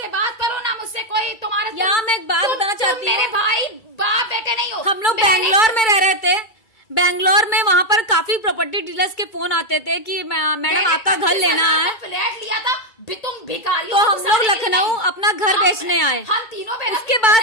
बात करो, ना मुझसे कोई तुम्हारा। यहाँ मैं एक बात बताना चाहती हूँ, मेरे भाई बाप बेटे नहीं हो। हम लोग बैंगलोर में रह रहे थे, बैंगलोर में वहाँ पर काफी प्रॉपर्टी डीलर्स के फोन आते थे कि मैडम आपका घर लेना है, फ्लैट लिया था, तुम भिखारी। तो हम लोग लखनऊ अपना घर बेचने आए। हम तीनों, उसके बाद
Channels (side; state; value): right; late; 2.2 ms